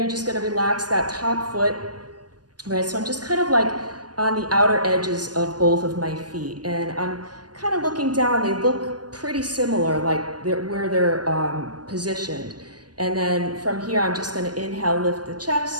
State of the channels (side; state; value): left; late; 0.69 ms